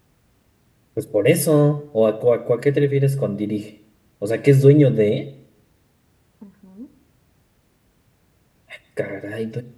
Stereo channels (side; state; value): both; identical; correlation 1.00